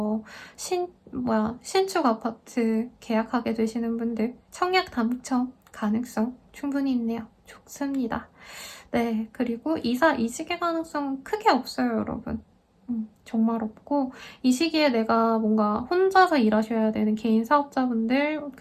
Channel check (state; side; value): identical; both; correlation 1.00